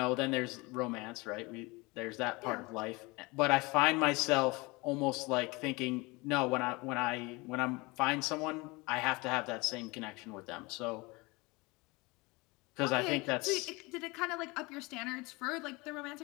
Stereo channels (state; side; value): quieter; right; 24.9 dB